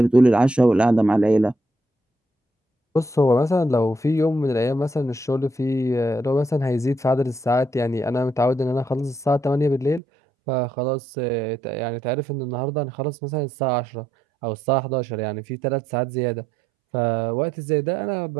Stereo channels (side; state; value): left; drops out; at 10.0 s